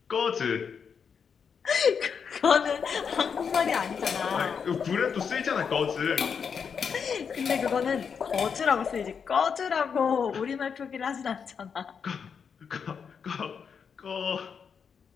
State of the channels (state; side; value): quieter; right; 6.5 dB